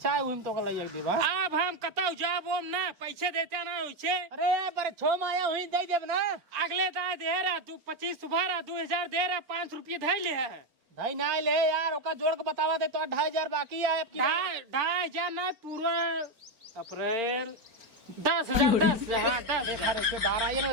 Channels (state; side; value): late; left; 4.4 ms